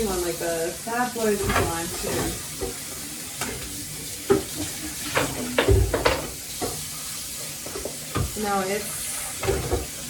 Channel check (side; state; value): both; identical; correlation 1.00